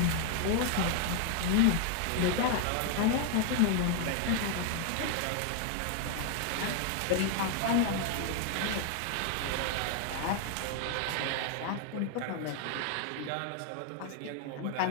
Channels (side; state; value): both; different; correlation 0.01